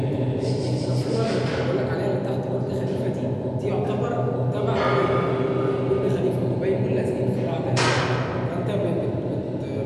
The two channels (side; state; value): both; identical; correlation 1.00